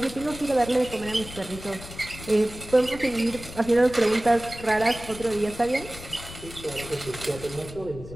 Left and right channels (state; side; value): noise; left; rumble, 14 dB below the sound